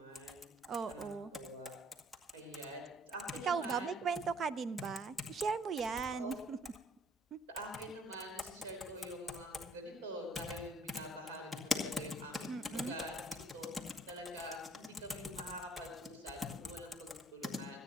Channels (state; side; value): normal; both; correlation 0.60